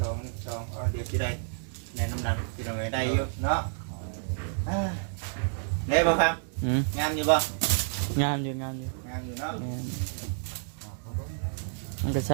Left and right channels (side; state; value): left; silent; digital silence